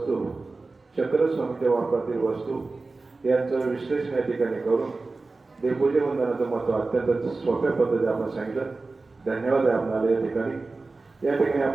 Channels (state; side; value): quieter; left; 3.6 dB